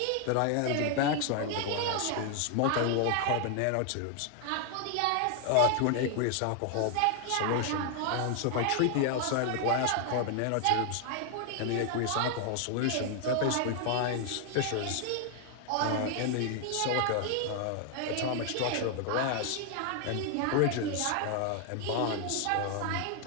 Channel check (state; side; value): different; both; correlation 0.00